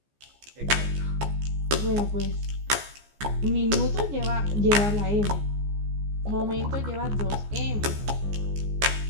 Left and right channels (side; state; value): left; late; 14 ms